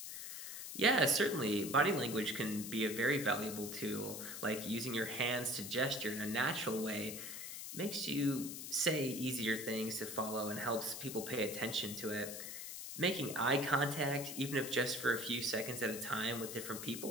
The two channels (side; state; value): left; noise; hiss, 8 dB below the sound